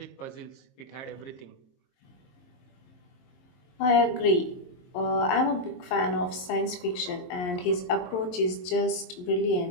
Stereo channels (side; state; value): right; late; 22 ms